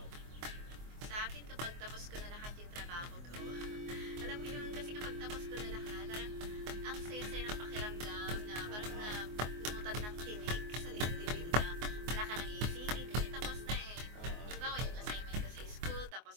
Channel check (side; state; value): left; late; 24 ms